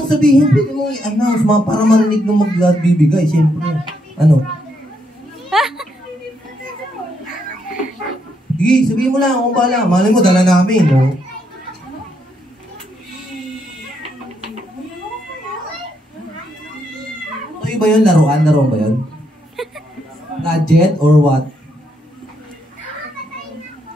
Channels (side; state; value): both; normal; correlation 0.76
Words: sabihin, pwede mong i-announce, para marinig nung mag-glad bibigay, siyempre. Ano? Sige, sabihin mo lang, kung bahala. Malay mo, dala namin. No? Ano ba yun? Laruan ba yun? Gadget or what?